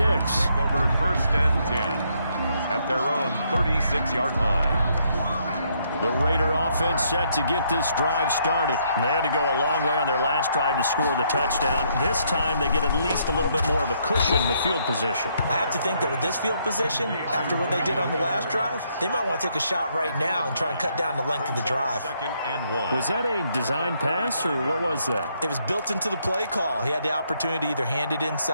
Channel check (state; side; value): inverted; both; correlation -0.72